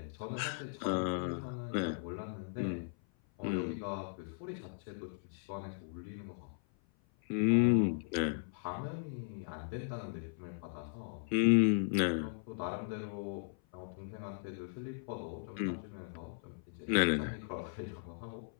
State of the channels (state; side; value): silent; right; 53 dB below the other